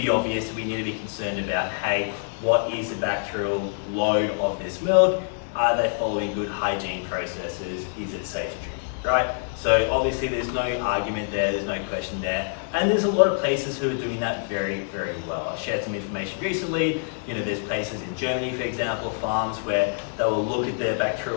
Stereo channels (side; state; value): right; silent; digital silence